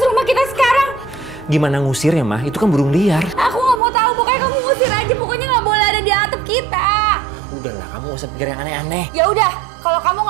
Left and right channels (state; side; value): drops out; left; at 3.8 s